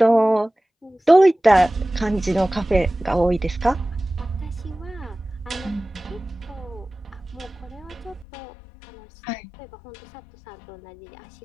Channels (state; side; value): drops out; right; at 8.2 s